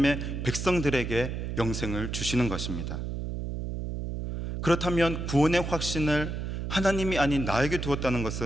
백성들에게 영생을 주시는 것입니다. 그렇다면 구원의 확신을 하나님이 아닌 나에게 두었다는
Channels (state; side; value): noise; right; hum, 4 dB below the sound